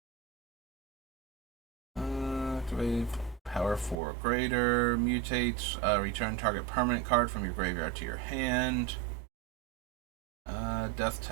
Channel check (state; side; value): drops out; left; at 4.0 s